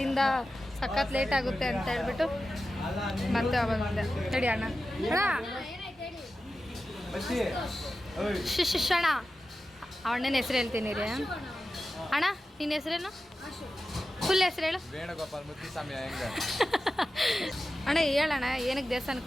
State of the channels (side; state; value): both; normal; correlation 0.93